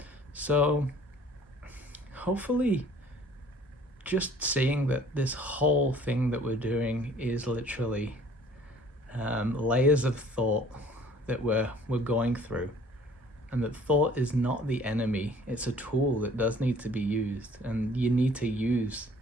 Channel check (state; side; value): normal; both; correlation 0.53